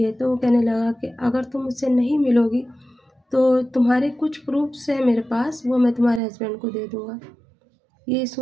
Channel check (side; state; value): left; drops out; at 6.2 s